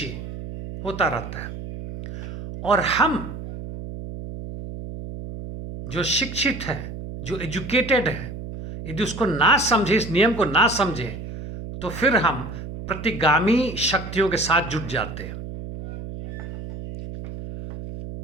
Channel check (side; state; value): right; noise; hum, 9 dB below the sound